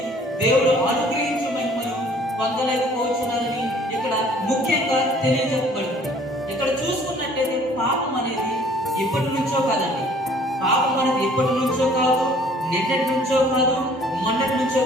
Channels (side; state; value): both; normal; correlation 0.55